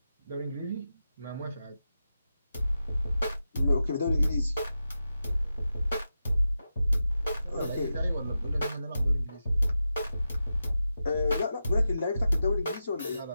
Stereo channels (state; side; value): inverted; both; correlation -0.90